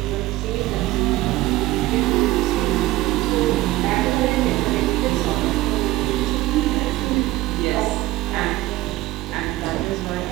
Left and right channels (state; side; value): quieter; left; 17.5 dB